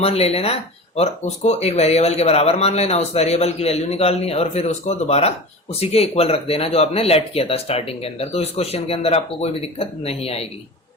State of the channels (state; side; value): normal; both; correlation 0.32